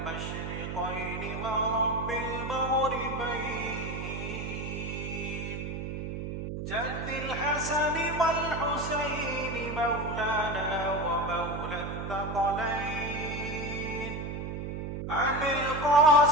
ورب المغربين جد الحسن والحسين مولانا ومولى الثقلين أبي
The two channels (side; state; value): right; noise; hum, 5 dB below the sound